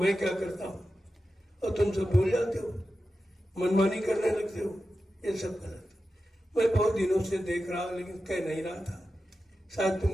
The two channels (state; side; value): normal; both; correlation 0.92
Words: क्या करता हूं और तुम सब भूल जाते हो, मनमानी करने लगते हो, ये सब गलत। मैं बहुत दिनों से देख रहा लेकिन कह नहीं रहा था, शायद